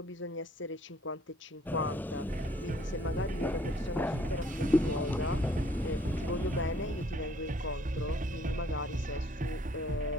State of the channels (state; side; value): normal; both; correlation 0.61